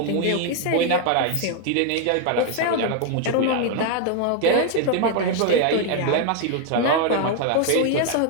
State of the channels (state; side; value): different; both; correlation 0.00